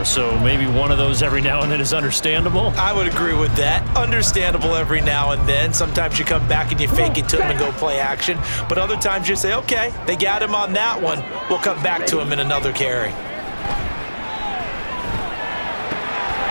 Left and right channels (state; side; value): inverted; both; correlation -1.00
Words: so maybe one of those every now and then is understandable. I would agree with that. Understandable every now and then. Sometimes you come back and you fake it to him and go play action. But other times you say, okay, they got him on that one. We'll come back to him in another carry.